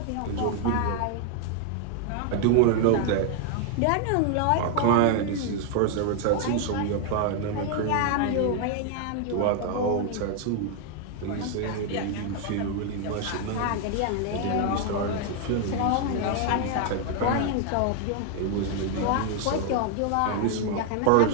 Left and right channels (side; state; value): both; different; correlation 0.00